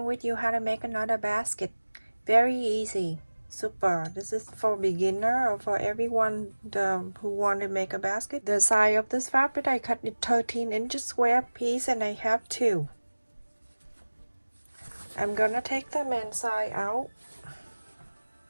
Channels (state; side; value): inverted; both; correlation -1.00